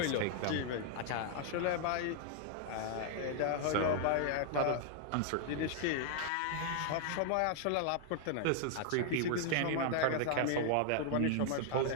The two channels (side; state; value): both; different; correlation 0.00